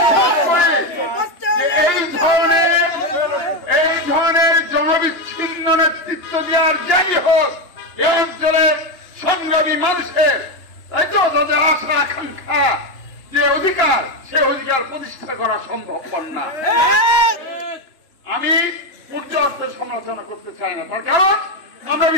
এই ধরনের জনবিচ্ছিন্ন নেতৃত্ব দেওয়ার যাই হোক, এই অঞ্চলের সংগ্রামী মানুষের, তাই তো, তাদের আশা আকাঙ্ক্ষা যে অধিকার, সে অধিকার প্রতিষ্ঠা করা সম্ভব না। আমি পর্যাপ্ত সমালোচনা করতে চাই না, তার কারণ আমরা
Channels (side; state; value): right; late; 2.9 ms